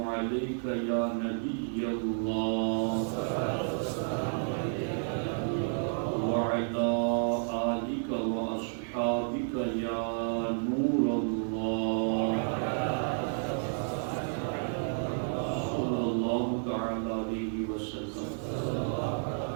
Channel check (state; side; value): silent; left; digital silence